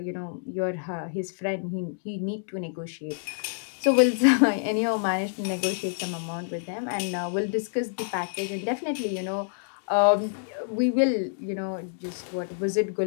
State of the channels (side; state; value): right; silent; digital silence